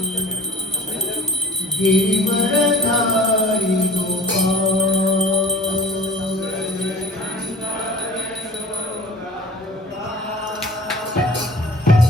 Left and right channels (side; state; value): both; normal; correlation 0.41